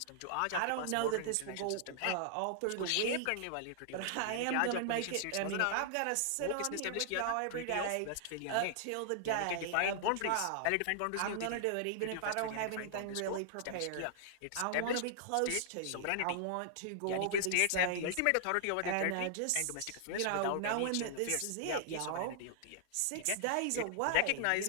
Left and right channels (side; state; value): both; different; correlation -0.01